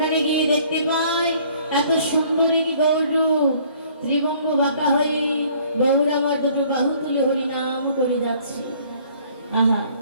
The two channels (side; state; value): both; inverted; correlation -0.58